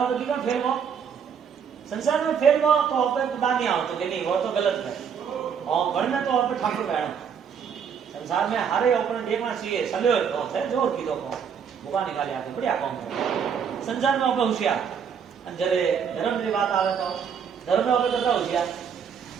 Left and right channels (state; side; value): quieter; left; 7.2 dB